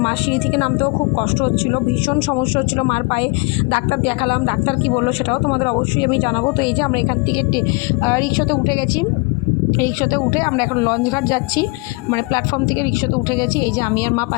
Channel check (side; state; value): right; quieter; 28.2 dB